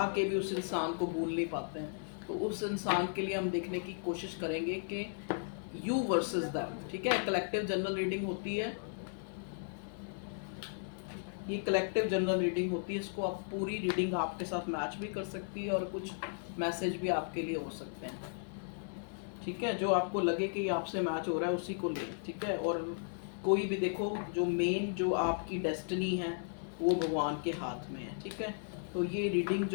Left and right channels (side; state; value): right; silent; digital silence